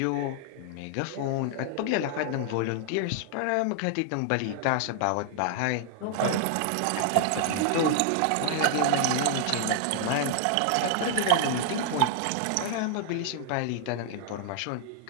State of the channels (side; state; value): both; different; correlation 0.00